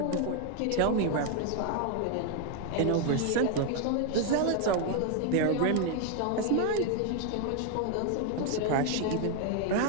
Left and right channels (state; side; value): different; both; correlation 0.00